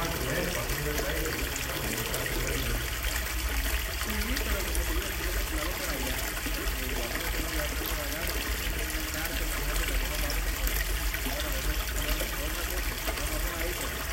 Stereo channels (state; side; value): identical; both; correlation 1.00